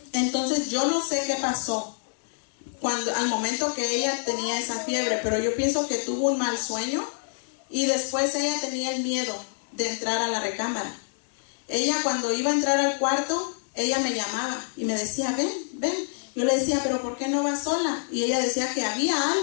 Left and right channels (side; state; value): right; silent; digital silence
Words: Entonces yo no sé qué pasó al momento que ella tenía esa fiebre, pero yo pienso que tuvo un mal sueño y después ella tenía el miedo de entrar a la recámara. Ella, cuando iba a entrar al cuarto, ella me llamaba y me decía: ven. Yo le decía: pero ¿por qué no vas sola? Y ella decía que había